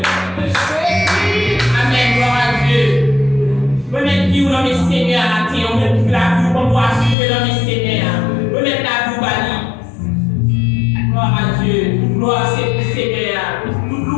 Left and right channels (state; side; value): drops out; right; at 7.2 s